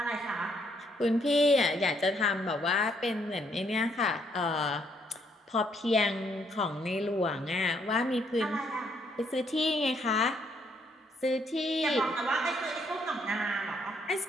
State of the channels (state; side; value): normal; both; correlation 0.71